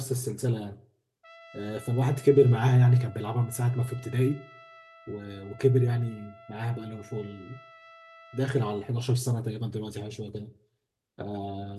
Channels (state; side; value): identical; both; correlation 1.00